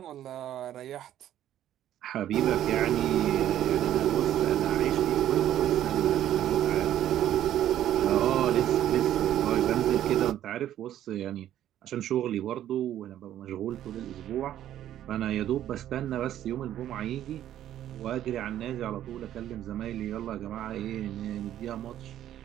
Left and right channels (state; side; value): quieter; left; 11.8 dB